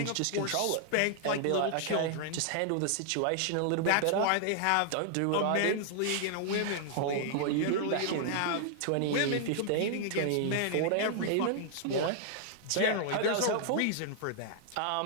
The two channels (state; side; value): different; both; correlation -0.01